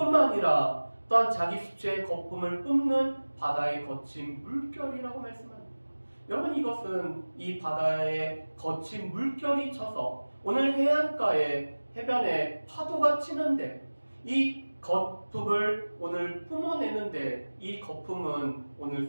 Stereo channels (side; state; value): both; inverted; correlation -1.00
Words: 아니라 또한 자기 수치의 거품을 뿜는 바다의 거친 물결이라고 말씀합니다. 여러분, 이것은 이 바다의 거친 물결이 쳐서 오늘 해안가에 해변에 파도가 치는데 이 거품을 오늘 뿜어내는데, 이 거품은 오늘